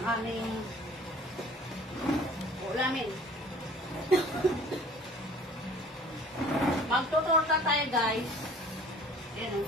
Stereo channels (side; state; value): both; normal; correlation 0.50